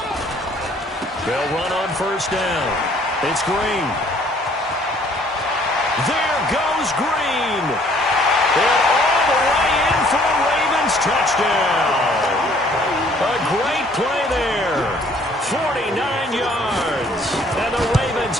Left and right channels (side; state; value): both; normal; correlation 0.59